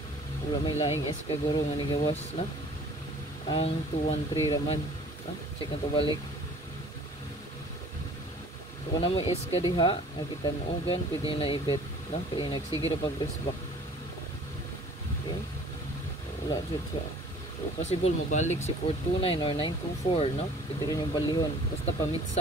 wala may laing eska guro nga nigawas na. Ang 213 raman. Check na to balik. So kung na mo eska diha, nakita mo ugan pwede na ibet, no? Kaya nagsige ra pag wristback. Okay? Wala jud siya. So, possible mo balik si 429 or 924, no? Pwede rin yung balihon. Basta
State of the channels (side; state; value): both; normal; correlation 0.50